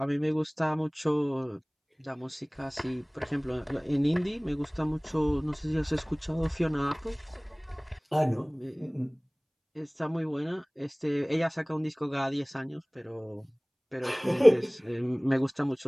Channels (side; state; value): both; identical; correlation 1.00